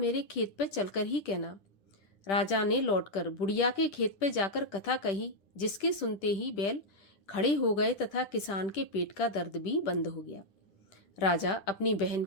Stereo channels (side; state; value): right; late; 10 ms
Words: खेत पर चलकर ही कहना। राजा ने लौटकर बुढ़िया के खेत पर जाकर कथा कही, जिसके सुनते ही बैल खड़े हो गए तथा किसान के पेट का दर्द भी बंद हो गया। राजा अपनी बहन